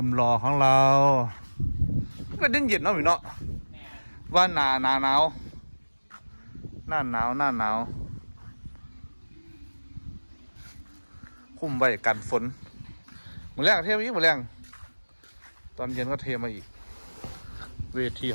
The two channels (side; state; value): both; inverted; correlation -1.00